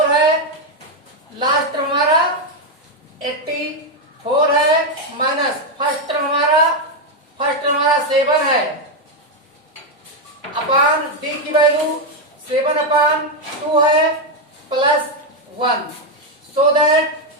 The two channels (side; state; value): both; normal; correlation 0.04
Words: है, लास्ट टर्म हमारा 84 है, माइनस फर्स्ट टर्म हमारा 7 है, अपॉन d की वैल्यू 7/2 है plus 1, so that